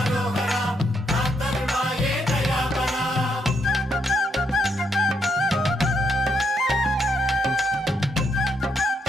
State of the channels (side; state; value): both; normal; correlation 0.76